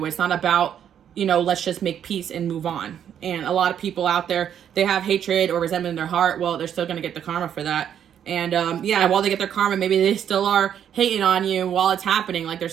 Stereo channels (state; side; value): quieter; left; 9.2 dB